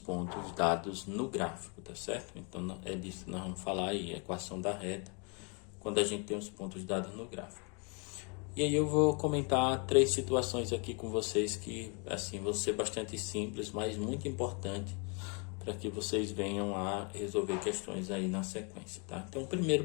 dados no gráfico, tá certo? Então é disso que nós vamos falar aí, equação da reta, quando a gente tem os pontos dados no gráfico. E aí eu vou comentar 3 situações aqui com vocês que, assim, vão ser bastante simples, mas muito importante para que vocês venham a resolver questões aí na sequência, tá? Então, o primeiro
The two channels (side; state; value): right; quieter; 34.8 dB